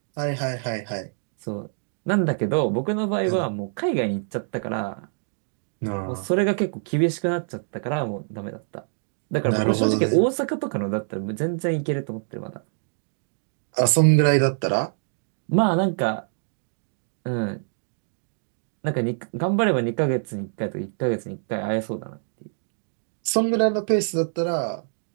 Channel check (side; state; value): left; silent; digital silence